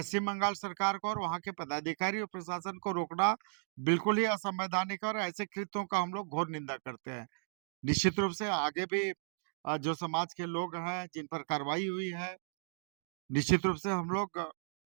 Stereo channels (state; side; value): silent; left; digital silence